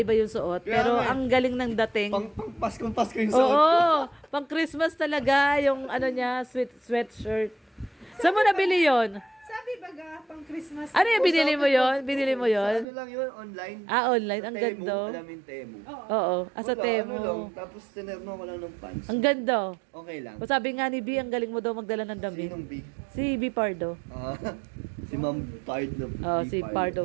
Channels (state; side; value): drops out; left; at 12.9 s